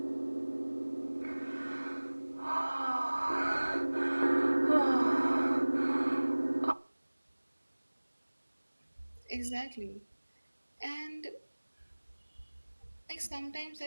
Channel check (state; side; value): inverted; both; correlation -1.00